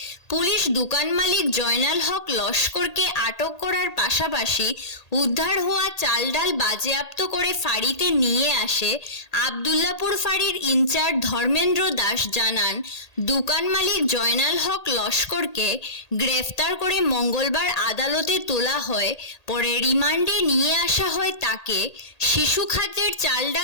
পুলিশ দোকান মালিক জয়নাল হক লস্করকে আটক করার পাশাপাশি উদ্ধার হওয়া চাল ডাল বাজেয়াপ্ত করে ফাঁড়িতে নিয়ে আসে। আবদুল্লাপুর ফাঁড়ির ইনচার্জ ধর্মেন্দ্র দাস জানান, দোকান মালিক জয়নাল হক লস্করকে গ্রেফতার করে মঙ্গলবার আদালতে তোলা হয়। পরে রিমান্ডে নিয়ে আসা হয় তাকে। শিশু খাদ্যের চাল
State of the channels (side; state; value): right; late; 1.8 ms